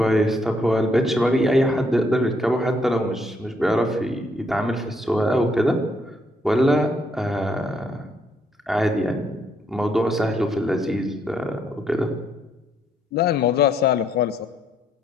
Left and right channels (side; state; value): both; normal; correlation 0.72